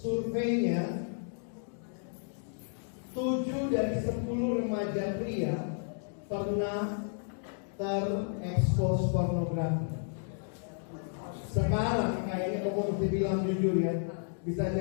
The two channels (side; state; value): right; silent; digital silence